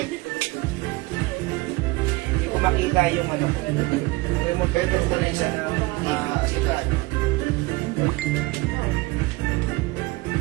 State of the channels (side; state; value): left; quieter; 22.3 dB